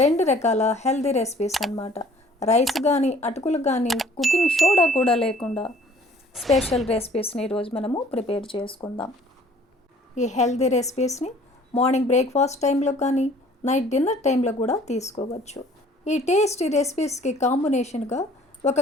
2 రకాల హెల్దీ రెసిపీస్ అన్నమాట. రైస్ కానీ అటుకులు కానీ కుకింగ్ సోడా కూడా లేకుండా స్పెషల్ రెసిపీస్ని ఈరోజు మనము ప్రిపేర్ చేసుకుందాం. ఈ హెల్దీ రెసిపీస్ని మార్నింగ్ బ్రేక్ఫాస్ట్ టైంలో కానీ నైట్ డిన్నర్ టైంలో కూడా తీసుకోవచ్చు. ఈ టేస్టీ రెసిపీస్కి కాంబినేషన్గా ఒక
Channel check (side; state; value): both; normal; correlation 0.54